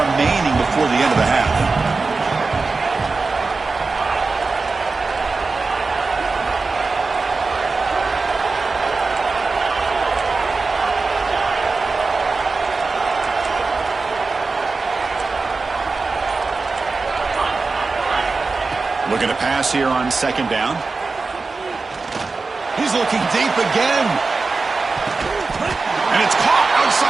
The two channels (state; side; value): quieter; left; 4.0 dB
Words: before the end of the half. Looking to pass here on 2nd down. He's looking deep again. And it's caught